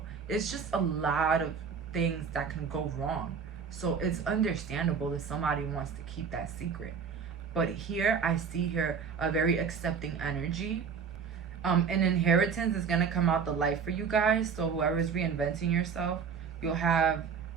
it's just a lot of things that can go wrong. So it's understandable that somebody wants to keep that secret. But here, I see here a very accepting energy. An inheritance is going to come out the light for you guys. So whoever is reinventing yourself, you'll have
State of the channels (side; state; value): left; quieter; 6.2 dB